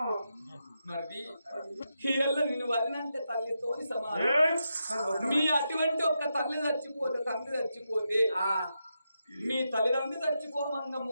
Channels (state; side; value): inverted; both; correlation -0.85